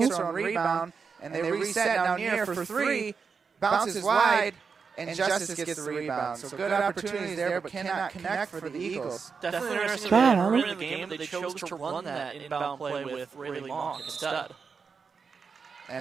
her own rebound, and they reset down near for 3, bounces wide, and Justice gets the rebound. So good opportunities there, but cannot connect for the Eagles. Definitely interesting that early in the game they chose to run that inbound play with Rayleigh Mock instead.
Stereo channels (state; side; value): quieter; left; 5.5 dB